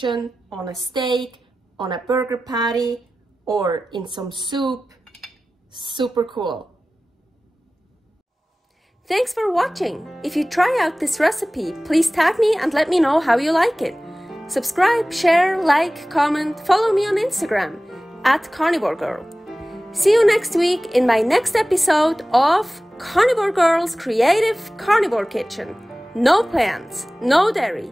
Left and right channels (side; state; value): both; normal; correlation 0.97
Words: on a steak, on a burger patty, or in some soup. Super cool. Thanks for watching. If you try out this recipe, please tag me and let me know how you like it. Subscribe, share, like, comment, follow me on Instagram @carnivorgirl. See you next week in my next episode of Carnivore Girl's Creative Carnivore Kitchen. No plants, no